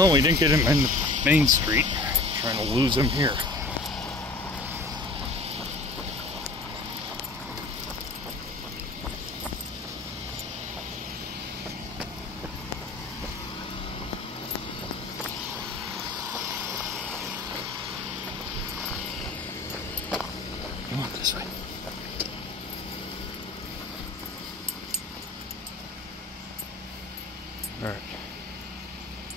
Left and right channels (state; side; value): quieter; right; 3.2 dB